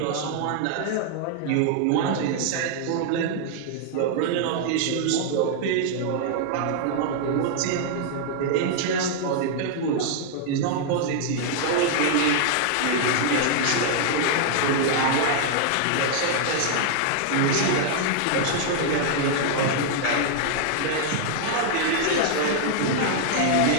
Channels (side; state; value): both; different; correlation -0.01